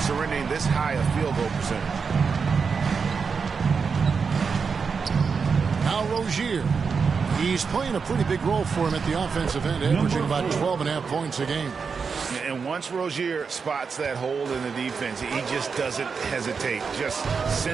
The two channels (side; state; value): left; quieter; 5.5 dB